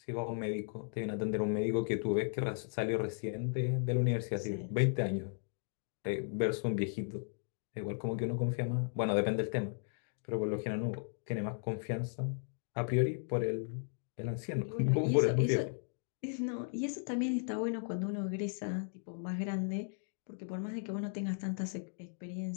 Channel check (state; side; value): silent; right; digital silence